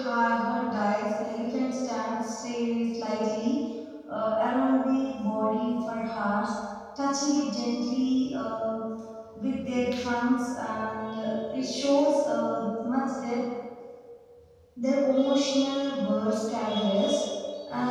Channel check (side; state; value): both; identical; correlation 1.00